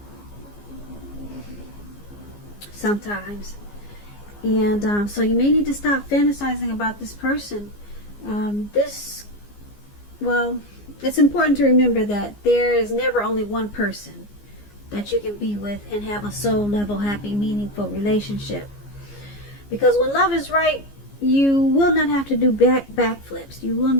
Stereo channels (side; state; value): right; late; 15 ms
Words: Sometimes. And so you may need to stop fantasizing about this person. It's important to remember that there is never only one person that you can be with and have a soul level, happy, meaningful relationship. Because when love is right, you will not have to do backflips. You will